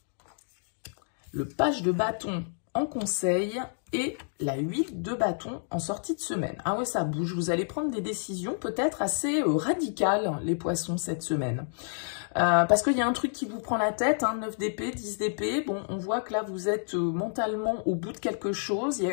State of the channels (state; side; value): silent; right; digital silence